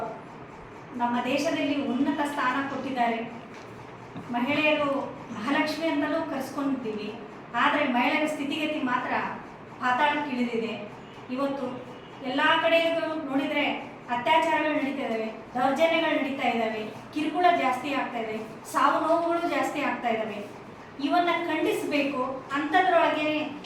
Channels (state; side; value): identical; both; correlation 1.00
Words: ನಮ್ಮ ದೇಶದಲ್ಲಿ ಉನ್ನತ ಸ್ಥಾನ ಕೊಟ್ಟಿದ್ದಾರೆ. ಮಹಿಳೆಯರು ಮಹಾಲಕ್ಷ್ಮಿ ಅಂತಲೂ ಕರೆಸ್ಕೊಂಡಿದ್ದೀವಿ. ಆದರೆ ಮಹಿಳೆಯರ ಸ್ಥಿತಿಗತಿ ಮಾತ್ರ ಪಾತಾಳಕ್ಕೆ ಇಳಿದಿದೆ. ಇವತ್ತು ಎಲ್ಲ ಕಡೆಗೂ ನೋಡಿದರೆ ಅತ್ಯಾಚಾರಗಳು ನಡೀತಾ ಇದ್ದಾವೆ, ದೌರ್ಜನ್ಯಗಳು ನಡೀತಾ ಇದ್ದಾವೆ, ಕಿರುಕುಳ ಜಾಸ್ತಿ ಆಗ್ತಾ ಇದೆ, ಸಾವು ನೋವುಗಳು ಜಾಸ್ತಿ ಆಗ್ತಾ ಇದ್ದಾವೆ. ಇವನ್ನ ಖಂಡಿಸಬೇಕು. ಅಂಥದ್ರೊಳಗೆ